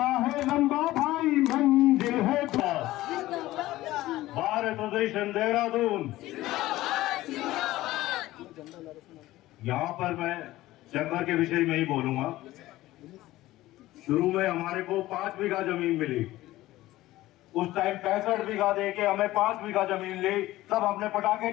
है लंबा भाई मंजिल है भारत देशन देहरादून। यहाँ पर मैं चैम्बर के विषय में ही बोलूंगा। शुरू में हमारे को 5 बीघा जमीन मिली, उस टाइम 65 बीघा दे के हमें 5 बीघा जमीन ली, तब हमने पटाखे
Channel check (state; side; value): quieter; right; 16.6 dB